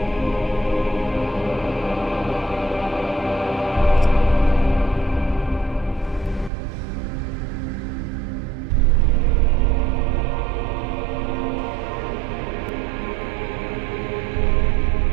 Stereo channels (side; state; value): left; drops out; at 6.5 s